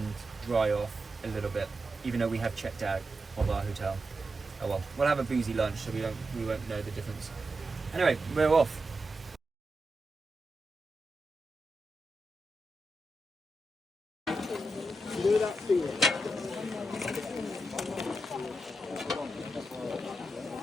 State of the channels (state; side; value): normal; both; correlation 0.88